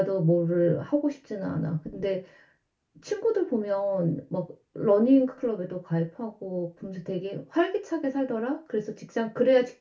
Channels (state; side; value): identical; both; correlation 1.00